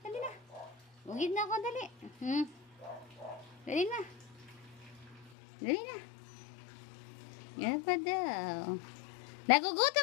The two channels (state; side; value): drops out; right; at 5.3 s